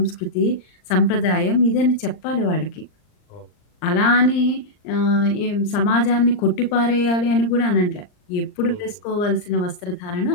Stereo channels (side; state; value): right; late; 39 ms